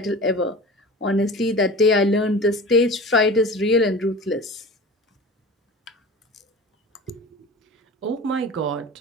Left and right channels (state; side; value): normal; both; correlation 0.36